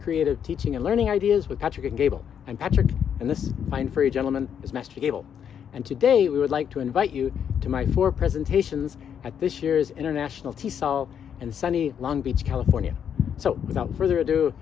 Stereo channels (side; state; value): right; quieter; 8.3 dB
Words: Teaching and Learning Ideas with Patrick and Gable. I'm Patrick, and this fine furry gentleman is Master Gable. And today we would like to invite you to my 4 presentations at this year's International TESOL in sunny Long Beach, California. So without further ado,